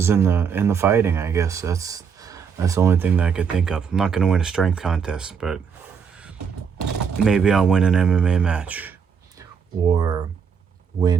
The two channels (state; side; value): quieter; left; 6.6 dB